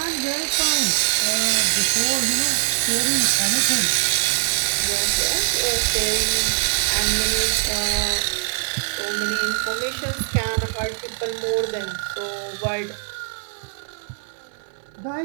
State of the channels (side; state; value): left; silent; 58 dB below the other